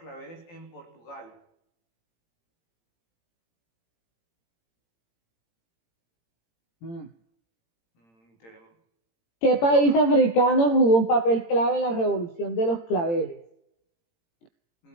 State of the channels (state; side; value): late; right; 18 ms